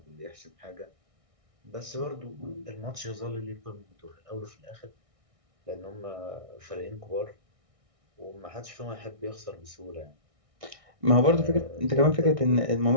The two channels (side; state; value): left; late; 1.6 ms